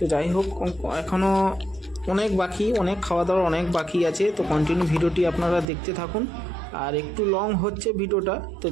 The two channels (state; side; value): drops out; left; at 5.7 s